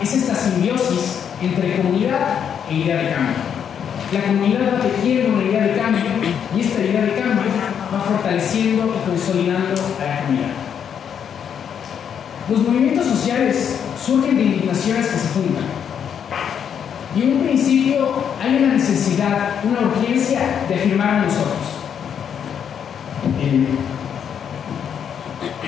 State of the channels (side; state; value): right; quieter; 8.1 dB